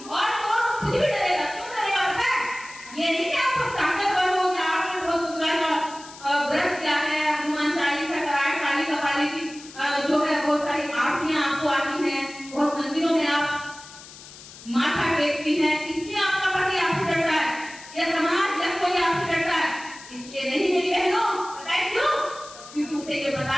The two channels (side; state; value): left; noise; hiss, 17 dB below the sound